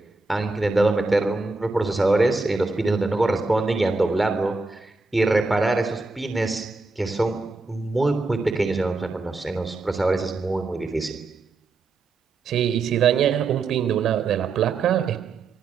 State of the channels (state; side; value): quieter; left; 3.7 dB